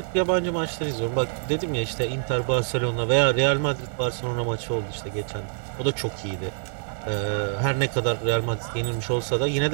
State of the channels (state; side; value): silent; left; digital silence